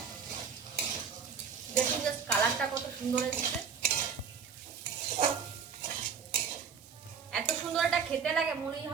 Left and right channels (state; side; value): quieter; left; 6.7 dB